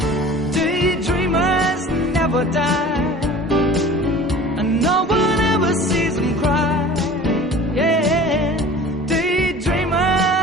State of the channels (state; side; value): normal; both; correlation 0.42